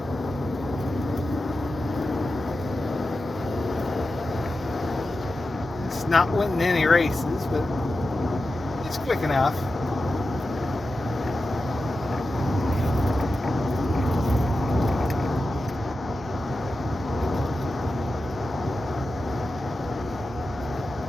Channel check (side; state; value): both; normal; correlation 0.91